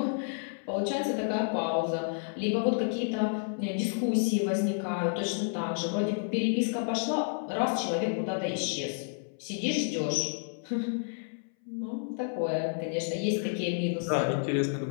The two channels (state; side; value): silent; right; 58 dB below the other